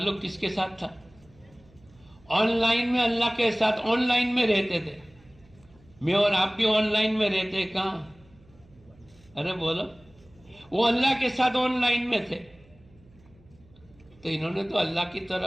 کس کے ساتھ تھا؟ آن لائن میں اللہ کے ساتھ آن لائن میں رہتے تھے. میں اور آپ بھی آن لائن میں رہتے کہاں؟ ارے بولو. وہ اللہ کے ساتھ آن لائن میں تھے، تو انہوں نے تو اللہ کی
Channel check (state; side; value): noise; right; hum, 28 dB below the sound